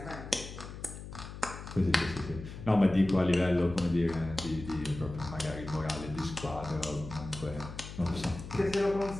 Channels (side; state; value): left; noise; hum, 11 dB below the sound